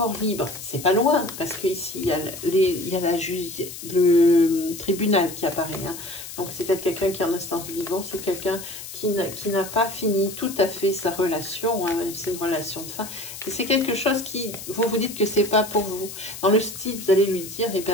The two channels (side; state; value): left; noise; hiss, 11 dB below the sound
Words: libre. C'est pas loin, parce qu'ici, il y a, le tribunal qui apparaît. Hein. Donc, c'est peut-être quelqu'un qui est en instance de divorce ou quelqu'un qui n'a pas fini tout à fait sa relation. Hein. C'est une relation de fin. Et c'est quelque chose qui, vous dites que c'est pas pour vous. Dans le style, vous allez lui dire, eh